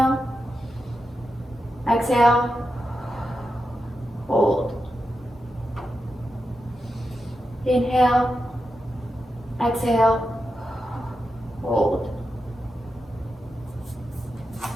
exhale, hold. Inhale, exhale, hold.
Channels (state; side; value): normal; both; correlation 0.88